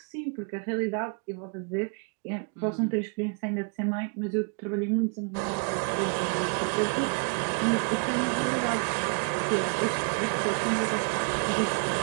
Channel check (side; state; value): left; quieter; 39.5 dB